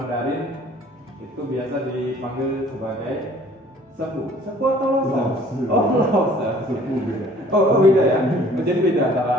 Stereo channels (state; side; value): normal; both; correlation 0.54